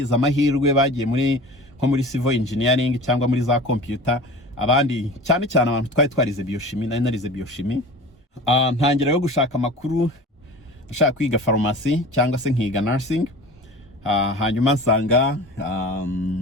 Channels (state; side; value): normal; both; correlation 0.37